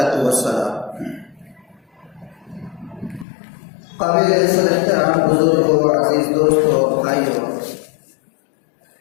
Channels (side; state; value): right; drops out; at 3.2 s